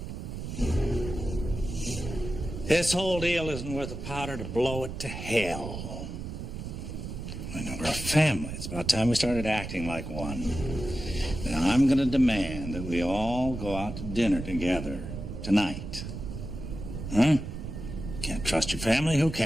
This whole deal isn't worth the powder to blow it to hell. I know we're a family. It's about time we started acting like one. Now, I'm going to demand that we all go out to dinner together tonight. Huh? Can't trust your family? Who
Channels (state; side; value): noise; right; rumble, 7 dB below the sound